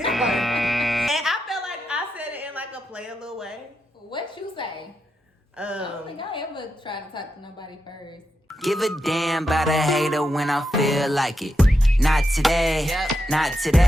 I felt like I said it in like a play a little way. What you say? I don't think I ever tried to talk to nobody first. Give a damn about a hater when I feel like it. Not today, not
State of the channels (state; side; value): normal; both; correlation 0.86